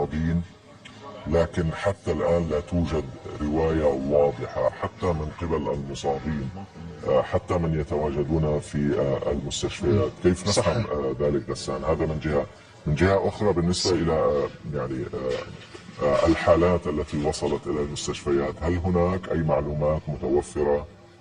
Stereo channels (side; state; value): both; identical; correlation 1.00